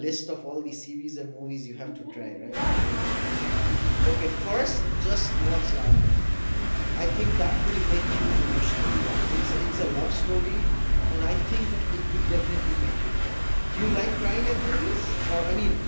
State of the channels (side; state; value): both; inverted; correlation -1.00